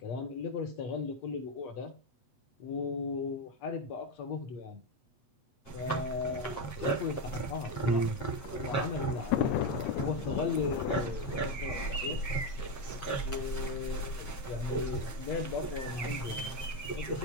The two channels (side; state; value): right; late; 7.6 ms